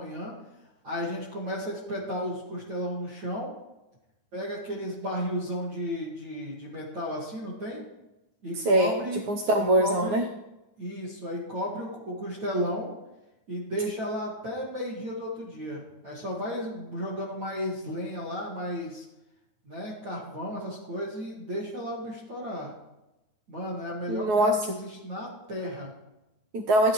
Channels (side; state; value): left; late; 9.4 ms